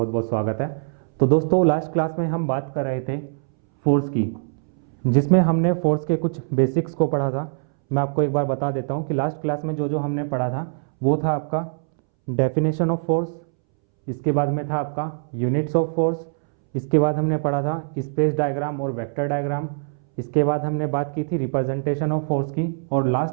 बहुत स्वागत है। तो दोस्तों, लास्ट क्लास में हम बात कर रहे थे फोर्स की, जिसमें हमने फोर्स के कुछ बेसिक्स को पढ़ा था। मैं आपको एक बार बता देता हूं कि लास्ट क्लास में जो जो हमने पढ़ा था वो था आपका डेफिनेशन ऑफ फोर्स, इसके बाद में था आपका यूनिट्स ऑफ फोर्स, इसके बाद हमने पढ़ा था स्पेस डायग्राम और वेक्टर डायग्राम, इसके बाद हमने बात की थी रिप्रेजेंटेशन ऑफ फोर्स की, और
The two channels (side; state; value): left; silent; 63 dB below the other